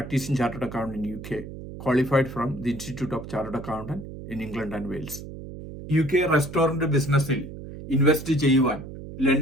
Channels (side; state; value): right; noise; hum, 11 dB below the sound